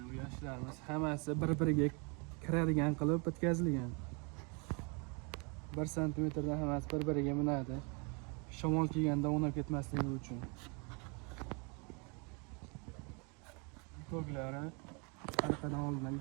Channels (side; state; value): left; quieter; 33.0 dB